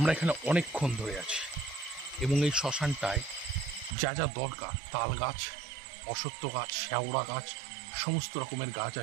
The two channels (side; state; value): left; drops out; at 4.0 s